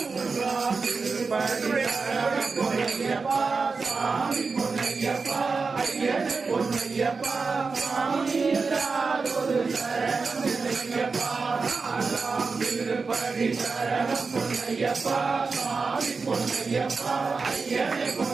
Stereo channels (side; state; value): left; quieter; 4.5 dB